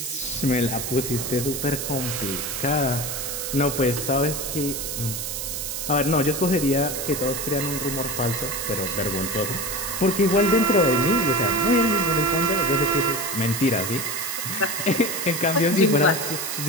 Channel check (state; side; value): noise; right; hiss, 4 dB below the sound